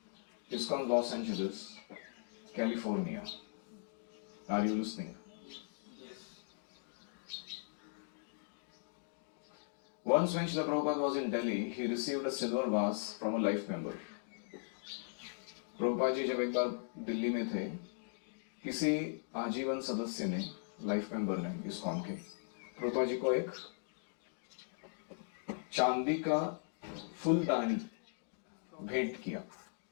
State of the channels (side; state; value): right; silent; digital silence